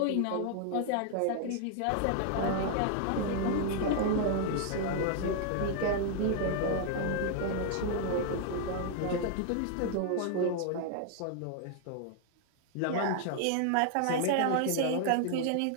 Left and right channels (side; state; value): both; different; correlation 0.00